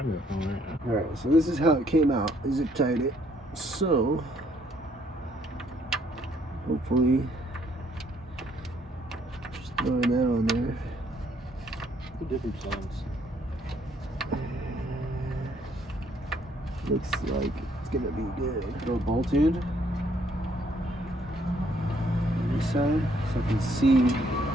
gonna phone right now. All right, so this is how it came out. Zip tied it. So hopefully, just throwing that on there. The different songs. Looks like it's gonna be good. Throw a bolt in on this side so I can see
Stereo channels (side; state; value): both; normal; correlation 0.67